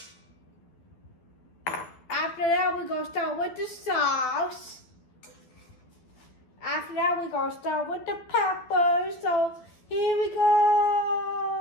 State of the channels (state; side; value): late; right; 12 ms